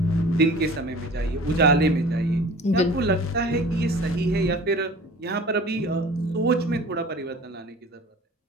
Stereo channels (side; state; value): both; normal; correlation 0.43